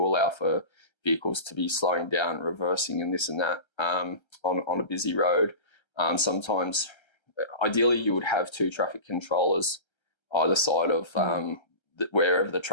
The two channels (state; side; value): late; right; 1.3 ms